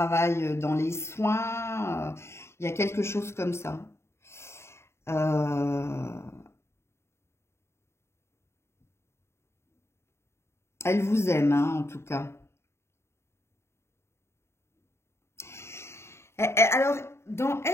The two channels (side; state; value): right; late; 0.13 ms